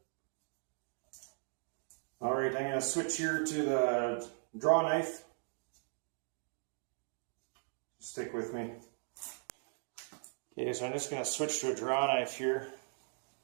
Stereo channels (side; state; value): left; silent; 52 dB below the other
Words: Alright, I'm going to switch here to the draw knife. Stick with me. Okay, so I'm just going to switch to a draw knife here.